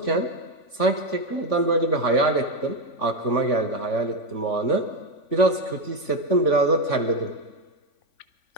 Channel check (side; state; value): right; late; 3.5 ms